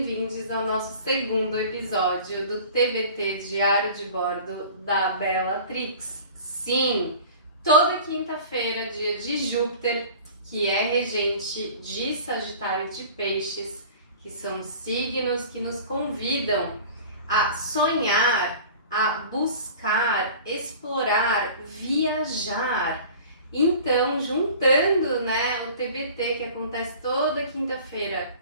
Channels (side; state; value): both; inverted; correlation -0.42